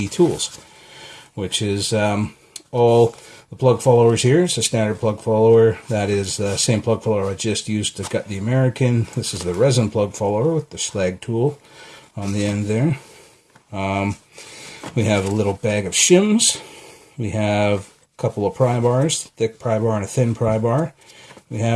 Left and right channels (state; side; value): identical; both; correlation 1.00